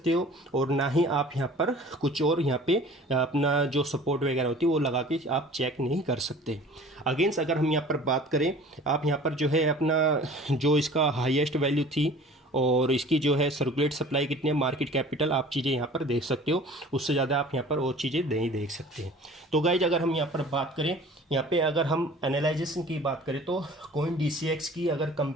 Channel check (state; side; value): normal; both; correlation 0.46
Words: हो और ना ही आप यहाँ पर कुछ और यहाँ पे अपना जो सपोर्ट वगैरह होती है वो लगा के आप चेक नहीं कर सकते। अगेंस्ट अगर हम यहाँ पर बात करें, आप यहाँ पर जो है अपना जो इसका हाईएस्ट वैल्यू थी और इसकी जो है सर्कुलेट सप्लाई कितनी है, मार्केट कैपिटल, आप चीज़ें यहाँ पर देख सकते हो। उससे ज़्यादा आप यहाँ पर और चीज़ें नहीं देख सकते। तो गाइज अगर हम यहाँ पर बात करें, यहाँ पे अगर हम एनालाइजेशन की बात करें तो कोइन DCX की अगर